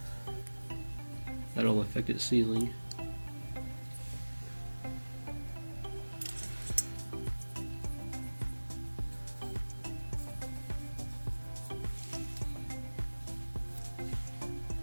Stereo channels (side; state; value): both; inverted; correlation -1.00